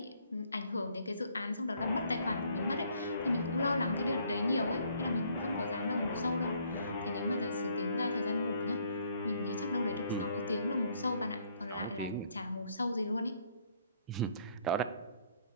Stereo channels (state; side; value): inverted; both; correlation -0.65